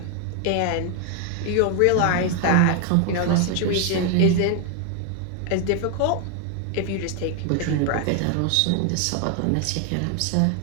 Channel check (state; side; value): different; both; correlation 0.00